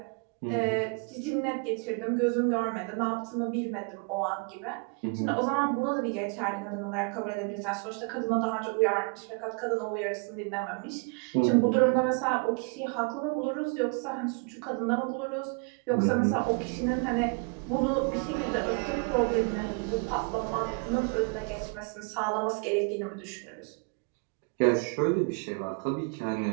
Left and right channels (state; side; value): quieter; left; 36.8 dB